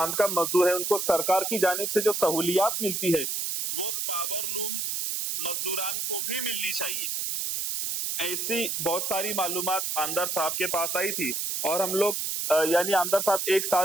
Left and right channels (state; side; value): noise; right; hiss, 2 dB below the sound